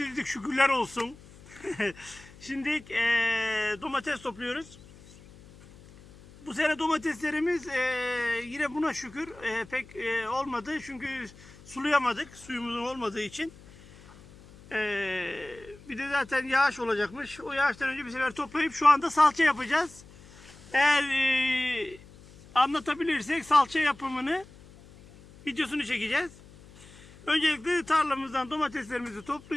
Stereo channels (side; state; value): left; noise; hum, 22 dB below the sound